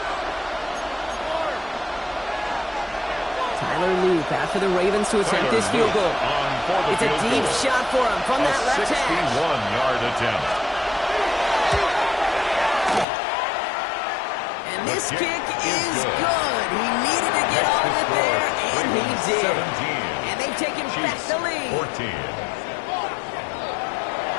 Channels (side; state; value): right; drops out; at 13.1 s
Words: Tyler Loop after the Ravens to attempt this field goal. It's a deep shot for him from that left hash. 61-yard attempt. And this kick is good. He needed to get all of it there, and he did. And they've taken back the lead. 14.